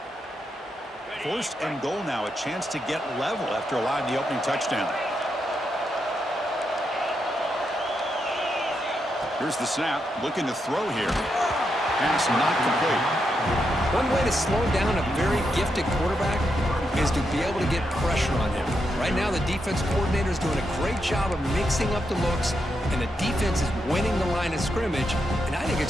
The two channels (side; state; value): both; normal; correlation 0.83